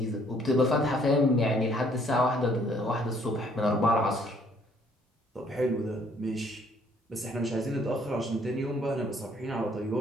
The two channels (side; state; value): both; normal; correlation 0.63